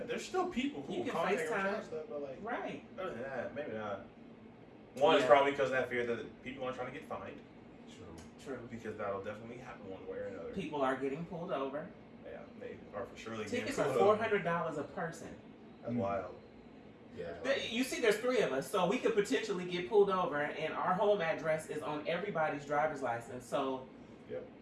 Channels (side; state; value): both; identical; correlation 1.00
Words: there's still people who You will can contact or FaceTime. chat stuff, but like Right. other than that, maybe not. One is Yeah. probably because of that fear that people aren't trying to get fined, True. because that'll definitely happen one way or another. People are getting pulled over. Yeah, they are for surely Tickets getting are pulled over. $400 a person. That's wild. Yeah. You see, there's 3 of us, so we could potentially get pulled over, and our home address is on everybody's driver's license. So, yep.